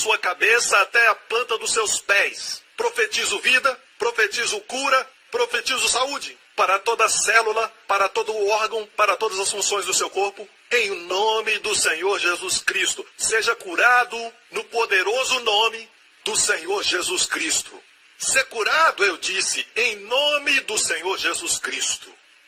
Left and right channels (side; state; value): both; identical; correlation 1.00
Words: cabeça até a planta dos seus pés. Profetizo vida, profetizo cura, profetizo saúde para toda célula, para todo órgão, para todas as funções do seu corpo. Em nome do Senhor Jesus Cristo, seja curado no poderoso nome do Senhor Jesus Cristo. Ser curado, eu disse, em nome do Senhor Jesus Cristo.